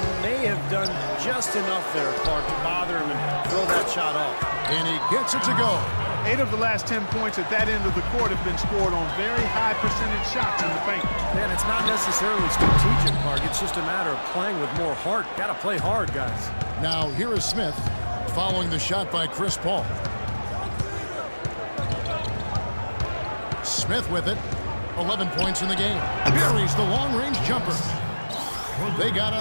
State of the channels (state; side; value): inverted; both; correlation -1.00